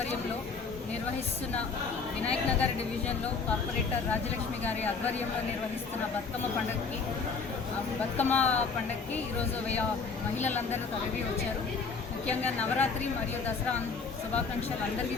నిర్వహిస్తున్న వినాయక్ నగర్ డివిజన్లో కార్పొరేటర్ రాజలక్ష్మి గారి ఆధ్వర్యంలో నిర్వహిస్తున్న బతుకమ్మ పండగకి ఈరోజు మహిళలందరూ తరలి వచ్చారు. ముఖ్యంగా నవరాత్రి మరియు దసరా శుభాకాంక్షలు అందరికీ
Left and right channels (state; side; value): quieter; right; 4.9 dB